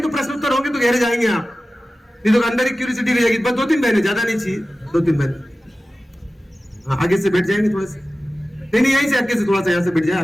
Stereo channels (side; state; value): both; normal; correlation 0.95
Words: प्रश्न उत्तर होंगे तो गहरे जाएंगे आप, नहीं तो अंदर ही क्यूरियोसिटी रह जाएगी। बस 2-3 बहनें, ज्यादा नहीं चाहिए, 2-3 बहनें। हाँ, आगे से बैठ जाएंगे थोड़े से, नहीं यहीं से आगे से थोड़ा सा यहाँ से बैठ जाए